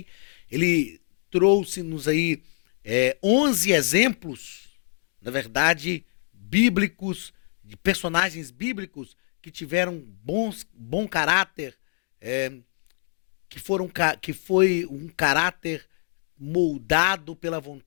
Ele trouxe-nos aí 11 exemplos, na verdade, bíblicos, de personagens bíblicos que tiveram bom caráter, que foi um caráter moldado pela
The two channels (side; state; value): right; silent; 56 dB below the other